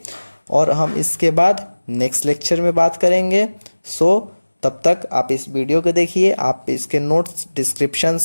और हम इसके बाद नेक्स्ट लेक्चर में बात करेंगे। सो तब तक आप इस वीडियो को देखिए, आप इसके नोट्स डिस्क्रिप्शन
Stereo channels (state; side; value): inverted; both; correlation -1.00